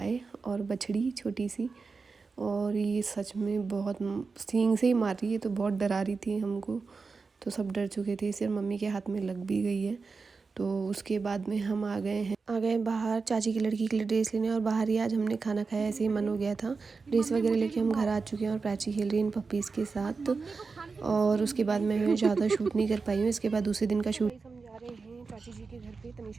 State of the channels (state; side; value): quieter; left; 4.5 dB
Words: और बछड़ी छोटी सी, और ये सच में बहुत सींग से ही मार रही है, तो बहुत डरा रही थी हमको। तो सब डर चुके थे, सिर्फ मम्मी के हाथ में लग भी गई है। तो उसके बाद में हम आ गए बाहर चाची की लड़की के लिए ड्रेस लेने। और बाहर ही आज हमने खाना खाया, ऐसे ही मन हो गया था। ड्रेस वगैरह लेके हम घर आ चुके हैं और प्राची खेल रही है इन पप्पीज़ के साथ। और उसके बाद मैं ज़्यादा शूट नहीं कर पाई हूँ। इसके बाद दूसरे दिन का शूट हम जा रहे हैं चाची जी के घर पे